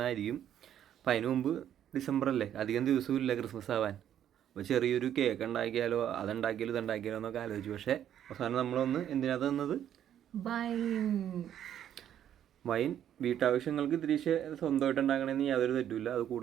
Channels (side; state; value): left; quieter; 10.4 dB